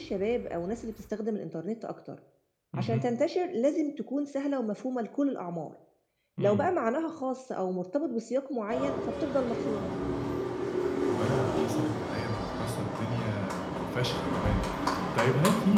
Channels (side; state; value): both; identical; correlation 1.00